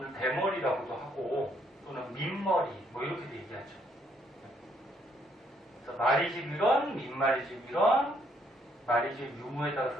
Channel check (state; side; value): normal; both; correlation 0.70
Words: 대머리라고도 하고 또는 민머리 뭐 이렇게도 얘기하죠. 그래서 마리집 유런, 민마리집 유런, 마리집 유무에